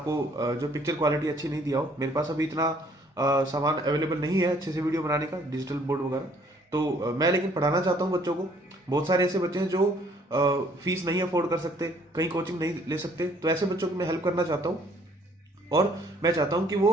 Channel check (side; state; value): both; normal; correlation 0.61